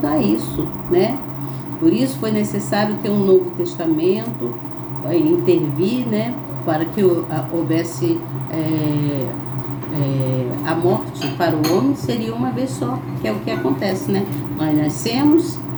a isso, né? Por isso foi necessário ter um Novo Testamento, intervir, né? Para que houvesse a morte para o homem, seria uma vez só, que é o que acontece, né? Nós nascemos,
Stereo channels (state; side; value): identical; both; correlation 1.00